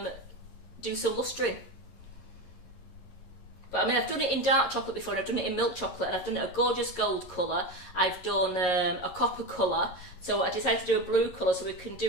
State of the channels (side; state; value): right; late; 11 ms